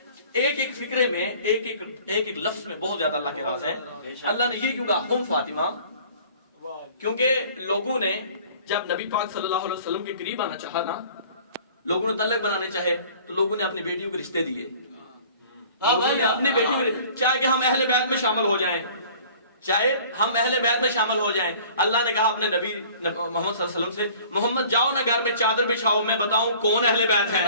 ایک ایک فکرے میں، ایک ایک لفظ میں بہت زیادہ اللہ کے راز ہیں۔ اللہ نے یہ کیوں کہا ہم فاطمہ؟ کیونکہ لوگوں نے جب نبی پاک صلی اللہ علیہ وسلم کے قریب آنا چاہا نا، لوگوں نے تلق بنانے چاہے تو لوگوں نے اپنی بیٹیوں کے رشتے دیے, لوگوں نے اپنی بیٹیوں کے چاہے کہ ہم اہل بیت میں شامل ہو جائیں, چاہے ہم اہل بیت میں شامل ہو جائیں. اللہ نے کہا اپنے نبی محمد صلی اللہ علیہ وسلم سے, محمد جاؤ نا گھر میں چادر بچھاؤ, میں بتاؤں کون اہل بیت ہیں.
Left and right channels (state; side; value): inverted; both; correlation -0.49